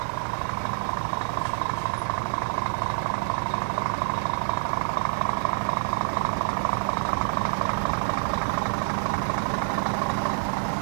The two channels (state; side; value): silent; left; digital silence